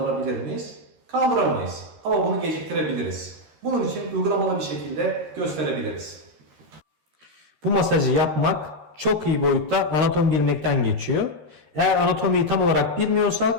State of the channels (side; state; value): left; late; 13 ms